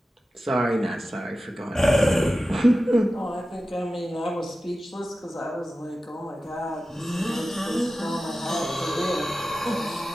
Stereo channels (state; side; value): normal; both; correlation 0.94